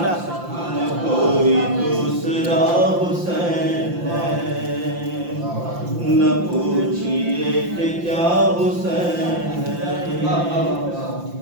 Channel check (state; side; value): late; left; 5.8 ms